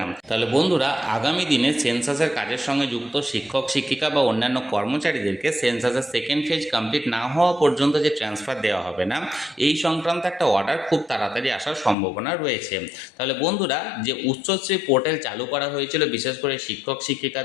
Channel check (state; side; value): drops out; right; at 12.0 s